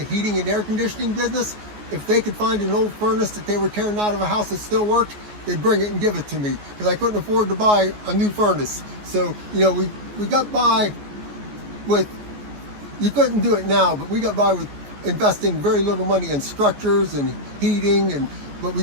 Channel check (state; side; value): late; left; 14 ms